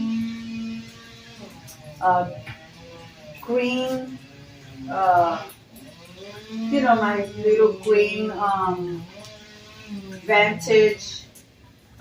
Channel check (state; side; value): identical; both; correlation 1.00